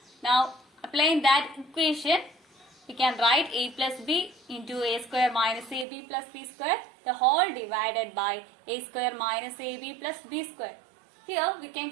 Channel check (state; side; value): drops out; left; at 5.9 s